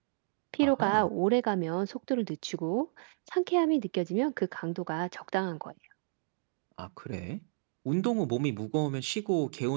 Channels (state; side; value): silent; left; digital silence